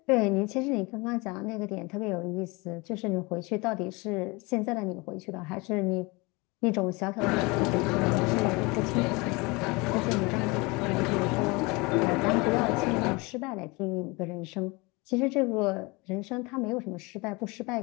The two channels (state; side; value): quieter; right; 25.9 dB